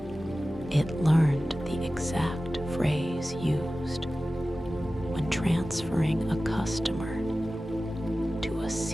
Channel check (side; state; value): both; normal; correlation 0.95